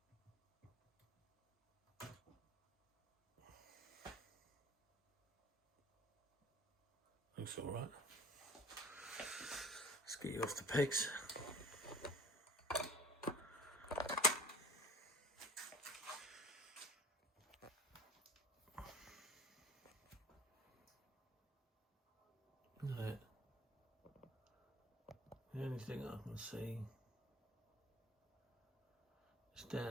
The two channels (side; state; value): both; normal; correlation 0.46